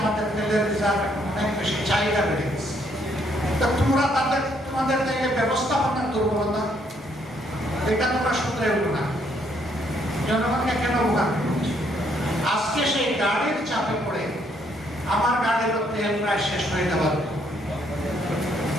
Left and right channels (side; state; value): both; normal; correlation 0.70